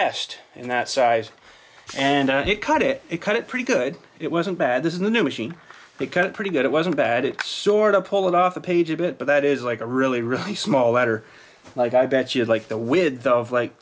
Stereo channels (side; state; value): both; identical; correlation 1.00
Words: in that size. And it cut it pretty good. It wasn't bad. This is the new machine. It cut it pretty good. It wasn't bad. It sort of pulled it off the page a bit, but that is like a really, really small letter. Like, I bet you like the width of